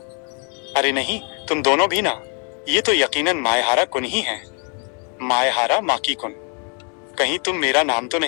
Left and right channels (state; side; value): quieter; right; 39.3 dB